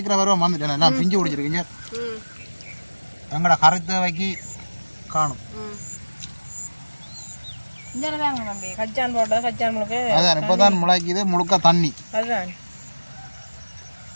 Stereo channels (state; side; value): inverted; both; correlation -1.00